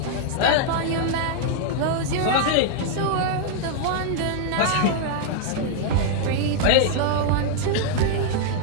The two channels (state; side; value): different; both; correlation -0.01